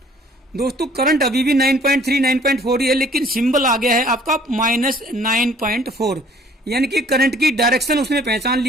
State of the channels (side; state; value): both; normal; correlation 0.56